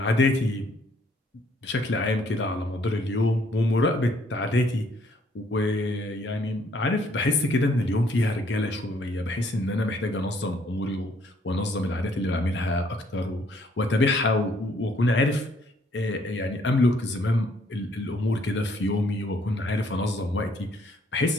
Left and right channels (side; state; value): both; normal; correlation 0.65